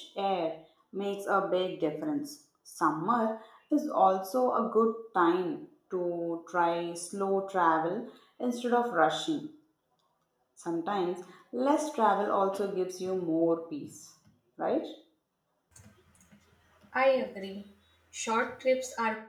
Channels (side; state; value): both; identical; correlation 1.00